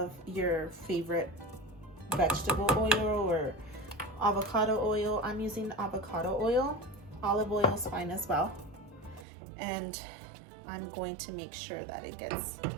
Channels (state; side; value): drops out; left; at 9.2 s